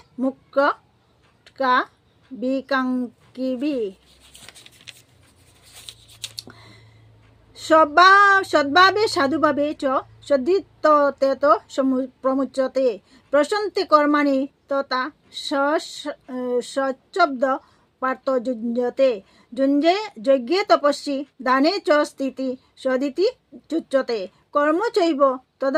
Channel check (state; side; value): identical; both; correlation 1.00